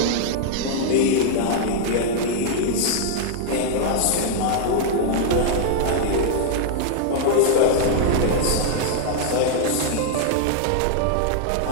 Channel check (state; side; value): different; both; correlation -0.01